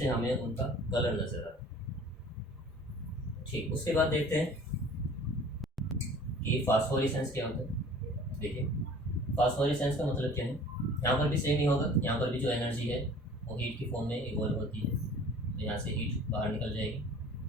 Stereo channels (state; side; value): normal; both; correlation 0.47